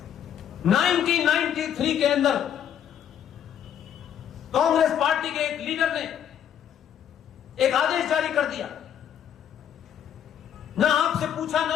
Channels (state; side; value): quieter; right; 9.4 dB